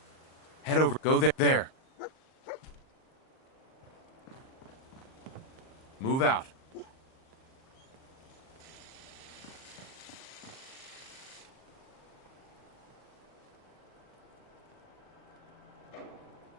Head over. Go there. There. Move out.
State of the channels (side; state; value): right; late; 38 ms